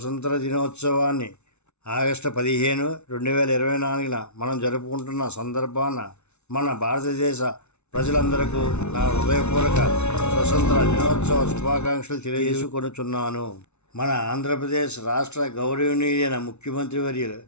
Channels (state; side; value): late; right; 0.82 ms